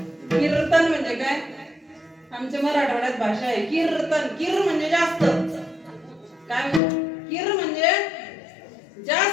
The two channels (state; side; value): drops out; right; at 6.8 s